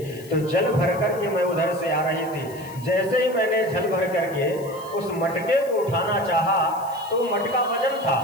तो जल भर करके मैं उधर से आ रही थी, जैसे ही मैंने जल भर करके उस मटके को उठाना चाहा तो मटका वजन था।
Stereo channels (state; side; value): noise; left; hiss, 20 dB below the sound